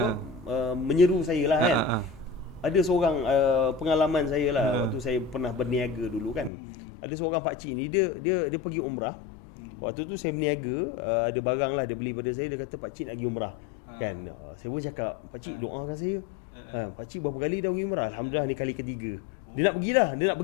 menyeru saya lah kan. Ada seorang pengalaman saya lah waktu saya pernah berniaga dulu kan. Ada seorang pakcik ni dia pergi umrah. Waktu tu saya berniaga, ada barang lah dia beli pada saya, dia kata pakcik nak pergi umrah. Kan. Saya pun cakap, pakcik doakan saya. Pakcik berapa kali dah pergi umrah? Alhamdulillah ni kali ketiga. Dia nak pergi lah, dia nak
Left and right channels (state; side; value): drops out; right; at 6.5 s